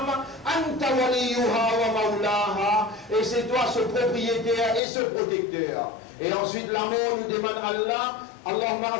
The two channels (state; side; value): drops out; right; at 4.8 s